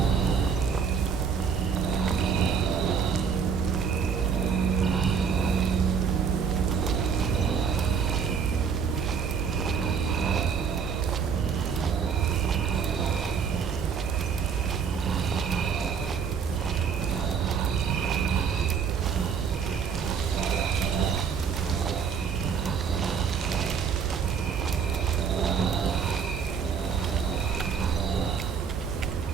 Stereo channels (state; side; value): quieter; left; 6.5 dB